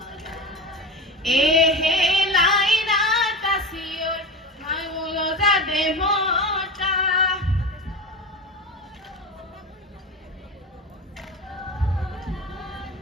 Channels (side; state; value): both; normal; correlation 0.25